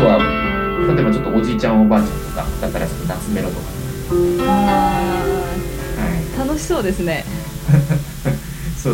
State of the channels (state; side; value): identical; both; correlation 1.00